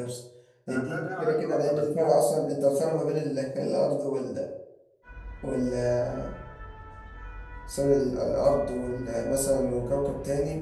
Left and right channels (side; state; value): both; identical; correlation 1.00